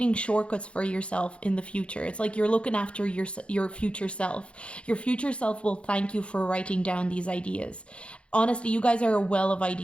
shortcuts for yourself in the future. It's like you're looking after your future self. Your future self will thank you for writing down these ideas. Honestly, you guys are a well of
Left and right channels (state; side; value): late; right; 0.059 ms